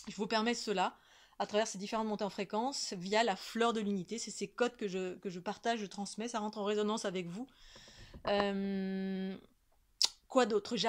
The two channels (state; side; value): identical; both; correlation 1.00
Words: Je vous permets cela à travers ces différentes montées en fréquence via la fleur de l'unité. C'est ces codes que je partage, je transmets, ça rentre en résonance avec vous. Quoi d'autre?